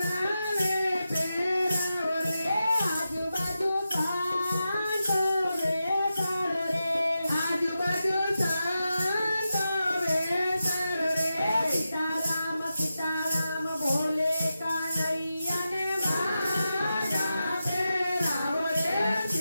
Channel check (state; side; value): inverted; both; correlation -0.90